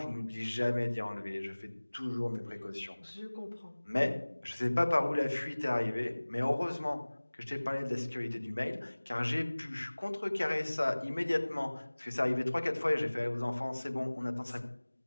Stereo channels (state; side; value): inverted; both; correlation -1.00